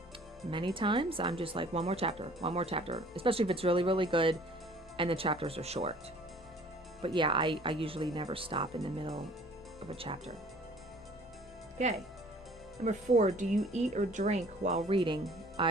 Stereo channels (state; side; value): normal; both; correlation 0.52